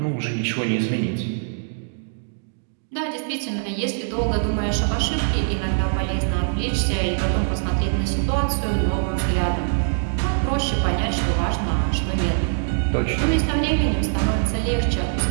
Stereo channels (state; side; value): silent; left; digital silence